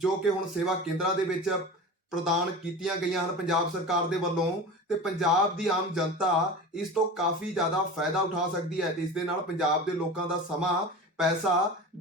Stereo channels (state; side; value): normal; both; correlation 0.32